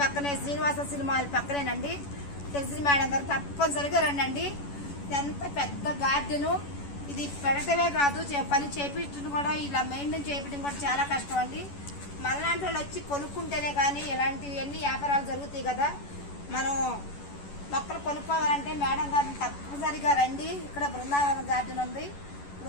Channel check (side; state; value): right; late; 11 ms